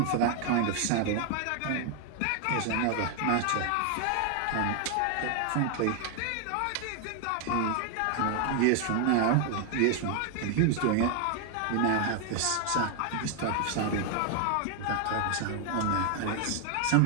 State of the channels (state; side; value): different; both; correlation 0.01